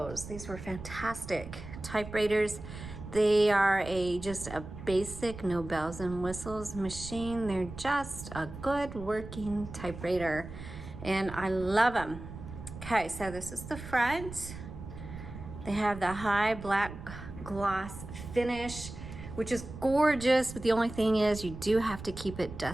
These were fantastic typewriters. They are just a basic, no bells and whistles machine. They're just a good working typewriter, and I love them. Okay, so this is the front. They have the high black gloss finish, which is gorgeous, but the only thing is you do have to keep it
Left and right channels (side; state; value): right; noise; rumble, 12 dB below the sound